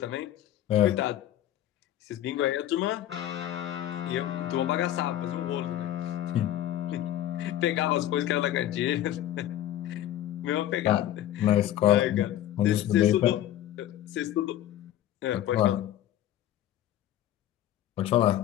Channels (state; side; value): quieter; right; 12.5 dB